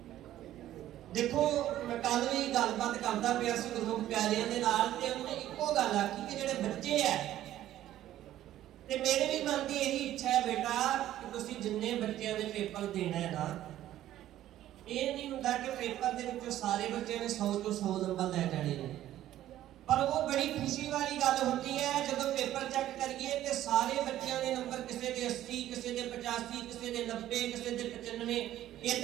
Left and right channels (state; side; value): quieter; left; 13.1 dB